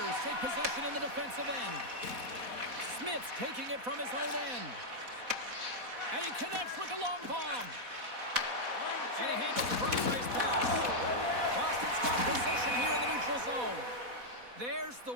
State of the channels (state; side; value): late; left; 4.1 ms